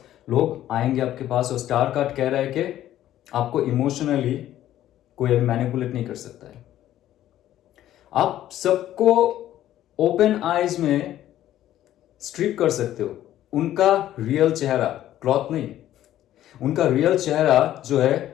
लोग आएंगे आपके पास। और स्टार कार्ड कह रहा है कि आपको इमोशनली कोई अभी मैनिपुलेट नहीं कर सकता है। आप सबको ओपन आइज में स्ट्रिप कर सकते हो, उनका रियल चेहरा, क्लॉथ नहीं, उनका रियल चेहरा जो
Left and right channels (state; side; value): quieter; right; 12.8 dB